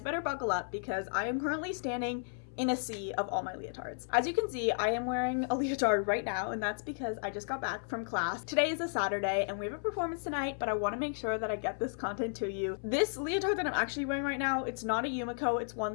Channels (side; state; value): right; silent; 55 dB below the other